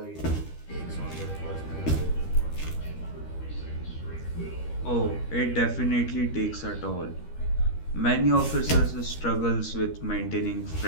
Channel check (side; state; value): right; late; 13 ms